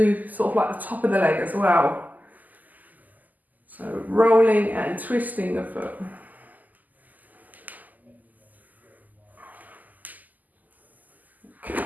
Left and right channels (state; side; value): late; left; 0.082 ms